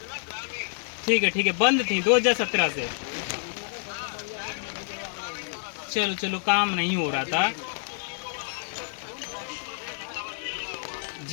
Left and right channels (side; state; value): right; silent; digital silence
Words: ठीक है, बंद थी 2017 से। चलो काम नहीं हो रहा था।